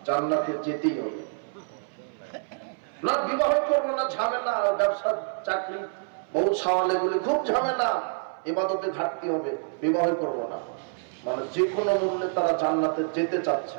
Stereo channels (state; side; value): silent; left; 60 dB below the other